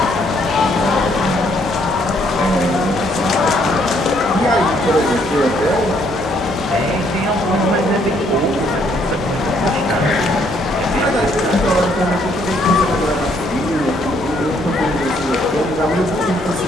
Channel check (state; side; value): normal; both; correlation 0.68